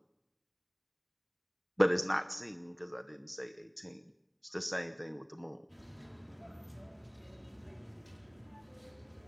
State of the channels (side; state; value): both; identical; correlation 1.00